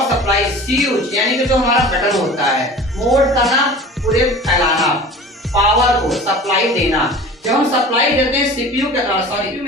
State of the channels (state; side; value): normal; both; correlation 0.40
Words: supply. Switch यानी कि जो हमारा बटन होता है, मोड करना पूरे फैलाना, पावर को सप्लाई देना। जब हम सप्लाई देते हैं सीपीयू के सॉरी